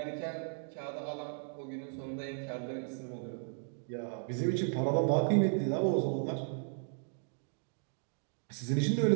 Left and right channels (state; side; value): silent; left; 54 dB below the other